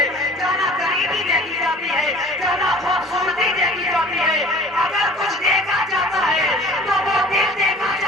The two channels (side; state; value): both; normal; correlation 0.46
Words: जाना गरीबी देखी जाती है, जाना खूबसूरती देखी जाती है। अगर कुछ देखा जाता है तो वो दिल देखा